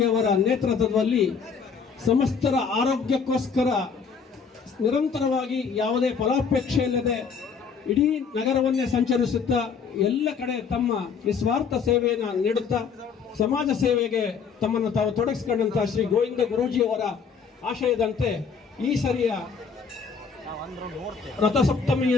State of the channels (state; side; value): quieter; right; 5.9 dB